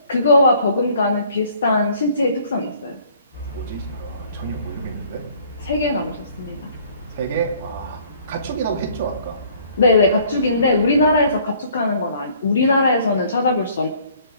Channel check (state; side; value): inverted; both; correlation -0.58